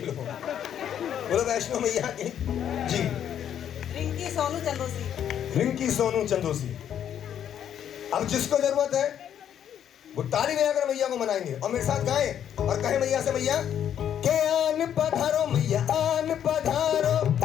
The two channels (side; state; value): right; quieter; 9.6 dB